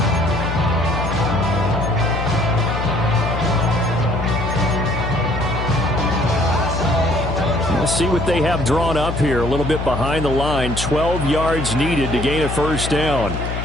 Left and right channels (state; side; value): noise; left; hum, 4 dB below the sound